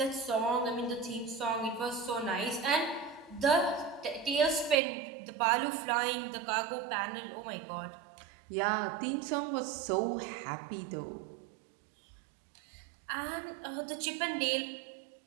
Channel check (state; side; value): drops out; left; at 4.8 s